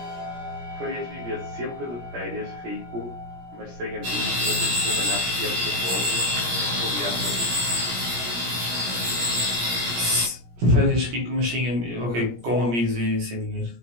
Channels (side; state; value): left; late; 17 ms